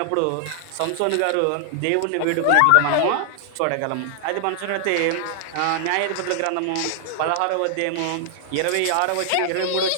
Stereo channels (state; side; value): different; both; correlation 0.00